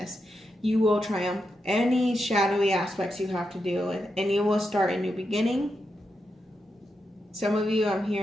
You will triumph any shadowy aspects you have to deal with, and you will start a new beginning. Some of you, I'm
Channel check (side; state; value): both; normal; correlation 0.85